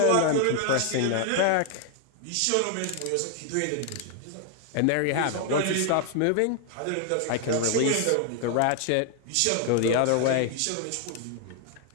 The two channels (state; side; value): different; both; correlation 0.00